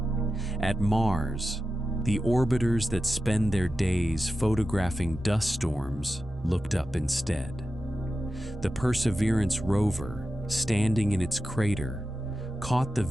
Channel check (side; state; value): both; normal; correlation 0.92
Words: At Mars, the orbiters that spend their days photographing dust storms looked up instead. The Perseverance rover, standing in its crater, caught the